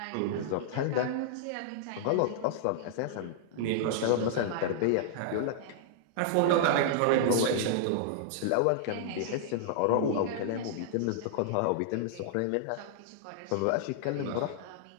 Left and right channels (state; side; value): different; both; correlation -0.01